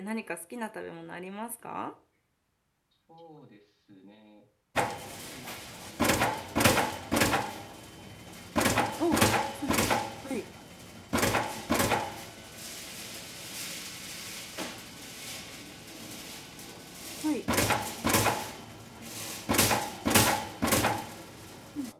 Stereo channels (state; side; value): identical; both; correlation 1.00